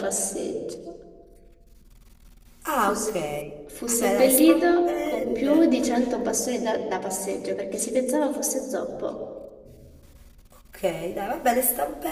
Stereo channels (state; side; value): identical; both; correlation 1.00